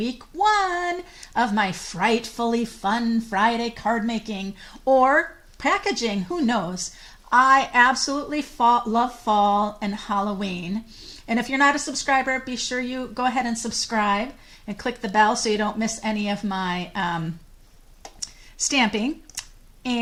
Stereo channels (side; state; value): both; identical; correlation 1.00